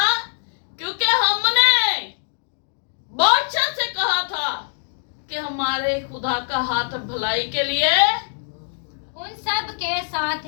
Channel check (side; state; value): right; silent; digital silence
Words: क्योंकि हमने बादशाह से कहा था कि हमारे खुदा का हाथ भलाई के लिए उन सब के साथ